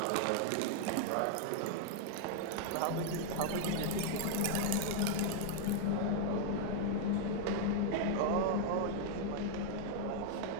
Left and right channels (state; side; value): different; both; correlation 0.00